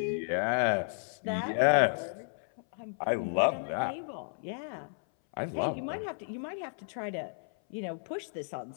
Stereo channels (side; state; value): right; silent; 56 dB below the other